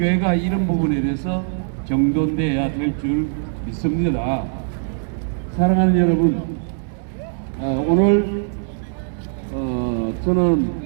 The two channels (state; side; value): silent; left; 65 dB below the other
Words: 이런 부분에 대해서 정돈돼야 될 줄 믿습니다. 사랑하는 여러분, 오늘